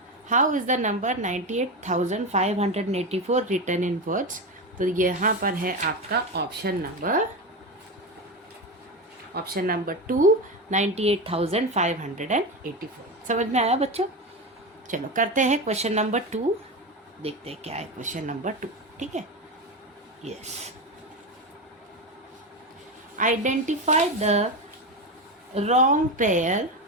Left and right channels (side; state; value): both; normal; correlation 0.18